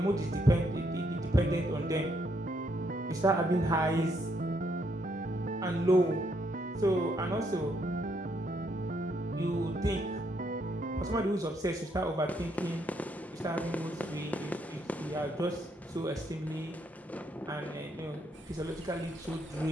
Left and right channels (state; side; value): normal; both; correlation 0.74